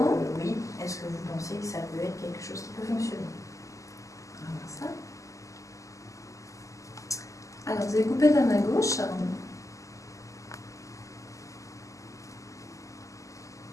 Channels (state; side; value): late; right; 0.16 ms